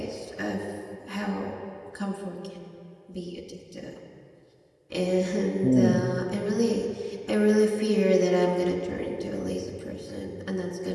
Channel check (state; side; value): identical; both; correlation 1.00